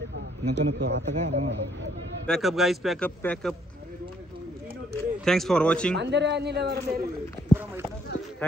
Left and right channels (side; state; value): both; normal; correlation 0.67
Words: नको आता काय. Pack up guys pack up. Thanks for watching.